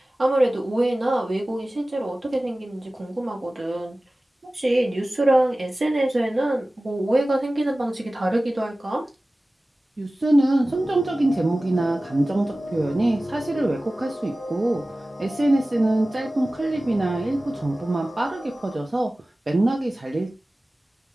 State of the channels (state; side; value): normal; both; correlation 0.97